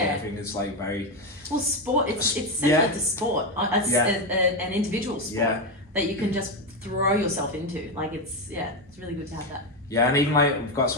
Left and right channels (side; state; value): both; normal; correlation 0.10